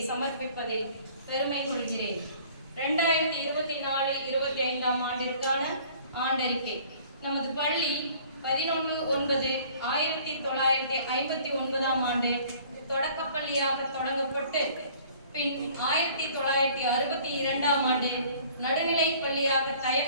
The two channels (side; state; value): both; inverted; correlation -0.53